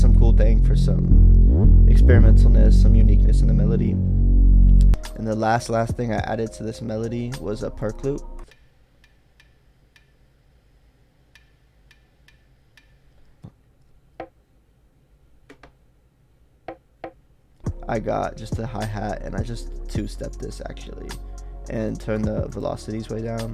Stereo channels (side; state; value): both; identical; correlation 1.00